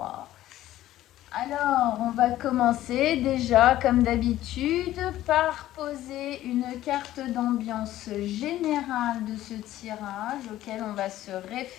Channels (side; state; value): right; quieter; 14.1 dB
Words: Alors on va commencer déjà comme d'habitude par poser une carte d'ambiance générale de ce tirage auquel on va se